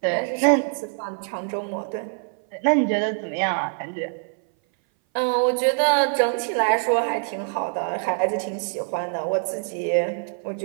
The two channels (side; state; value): left; silent; 59 dB below the other